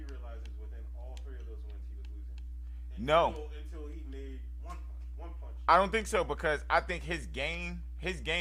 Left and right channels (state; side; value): identical; both; correlation 1.00